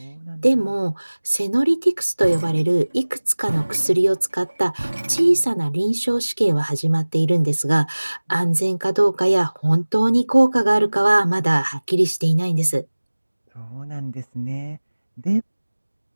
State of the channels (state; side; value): inverted; both; correlation -1.00